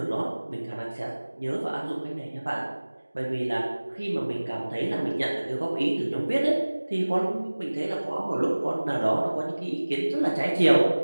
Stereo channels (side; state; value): both; inverted; correlation -1.00